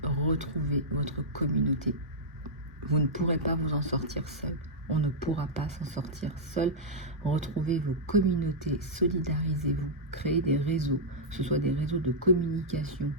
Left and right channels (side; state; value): both; normal; correlation -0.09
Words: retrouvez votre communauté. Vous ne pourrez pas vous en sortir seul. On ne pourra pas s'en sortir seul. Retrouvez vos communautés, solidarisez-vous, créez des réseaux, que ce soit des réseaux de communication,